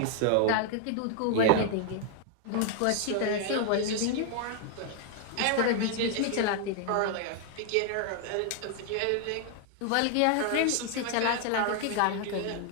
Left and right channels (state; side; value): different; both; correlation 0.00